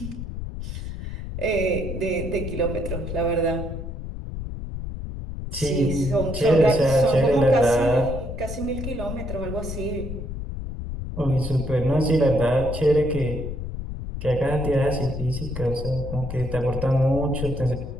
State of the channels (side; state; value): left; noise; rumble, 7 dB below the sound